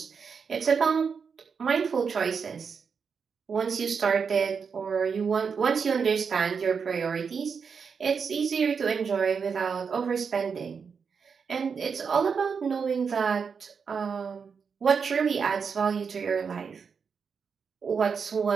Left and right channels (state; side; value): quieter; left; 6.0 dB